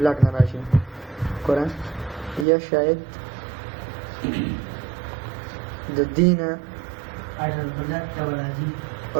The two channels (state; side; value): drops out; left; at 2.5 s